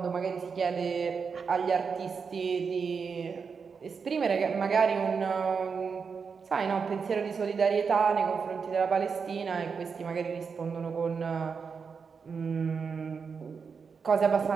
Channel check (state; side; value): quieter; left; 5.7 dB